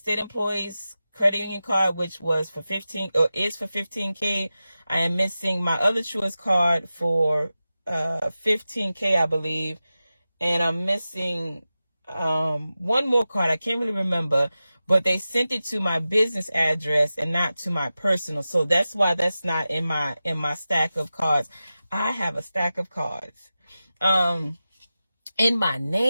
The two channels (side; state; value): both; inverted; correlation -0.94